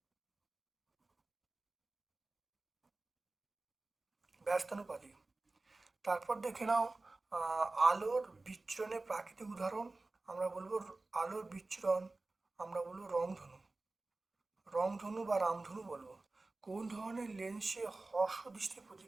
তারপর দেখে নাও আলোর বিচ্ছুরণের প্রাকৃতিক উদাহরণ, আমরা বলবো আলোর বিচ্ছুরণ, আমরা বলবো রংধনু বা রামধনু বলবো। কোন ধরনের লেন্সে হর্ষ দৃষ্টি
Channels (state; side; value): quieter; left; 3.2 dB